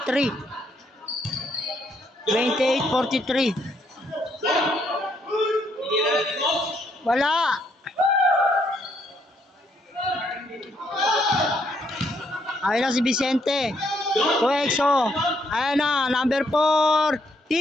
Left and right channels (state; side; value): normal; both; correlation 0.72